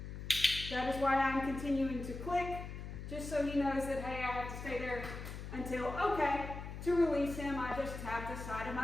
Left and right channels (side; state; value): left; noise; hum, 8 dB below the sound